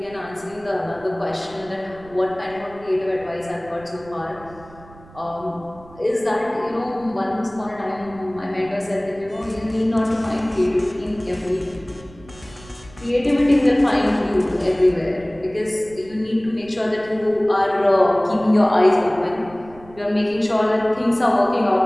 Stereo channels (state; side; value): noise; right; rumble, 22 dB below the sound